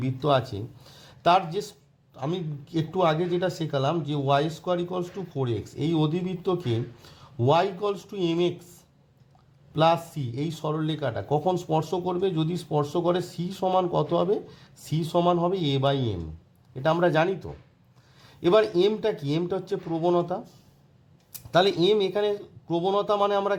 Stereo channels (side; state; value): both; identical; correlation 1.00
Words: আছে, তার যে আমি একটু আগে যেটা শেখালাম যে Y square equals to 4x, এই অধিবৃত্তকে Y equals to M x plus C এই সরলরেখাটা কখন স্পর্শ করবে? যদি স্পর্শ করে সি সমান কত হবে? সি সমান হবে এ বাই এম, এটা আমরা জানি তো। এবার এমটা কি? এমটা হচ্ছে প্রবণতা। তাহলে এম এখানে প্রবণতা মানে আমরা